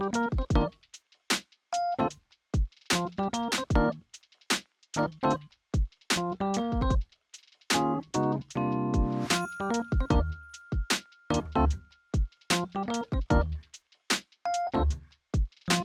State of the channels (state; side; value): identical; both; correlation 1.00